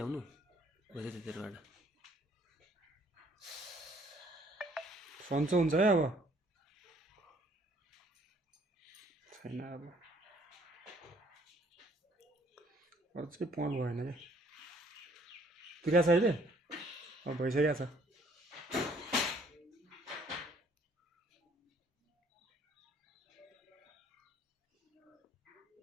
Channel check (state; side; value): normal; both; correlation 0.62